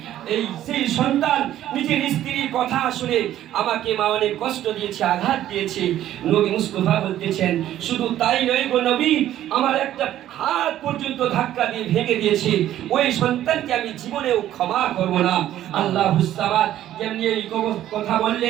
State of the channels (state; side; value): quieter; left; 12.5 dB